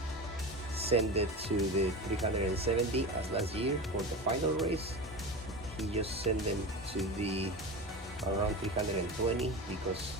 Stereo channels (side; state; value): both; normal; correlation 0.27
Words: send it to the 370 as last year for the final race. He just sent them to the around 320 because